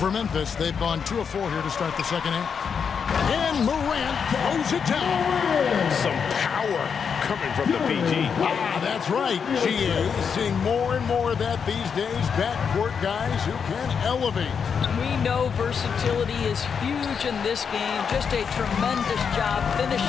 Memphis, they've gone 2 of 4 here to start the second half. And Morant throws it down. Some power coming from the PG. Ah, that's right, GA. Seeing more and more of that these days. Backcourt guys who can elevate. We know versatility is huge in this game. Just a tremendous job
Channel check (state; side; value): quieter; right; 6.6 dB